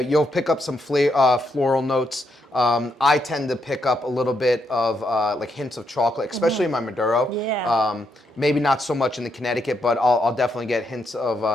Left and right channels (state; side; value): normal; both; correlation 0.79